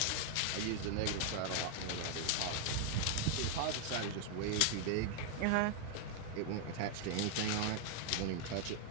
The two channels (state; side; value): different; both; correlation 0.00